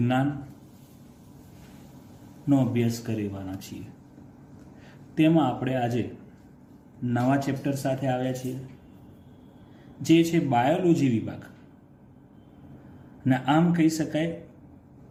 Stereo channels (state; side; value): identical; both; correlation 1.00